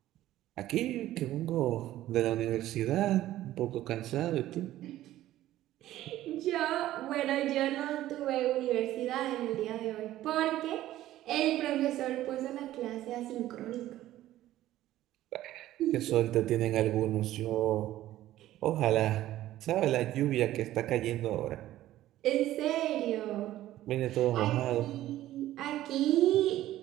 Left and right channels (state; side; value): quieter; left; 14.3 dB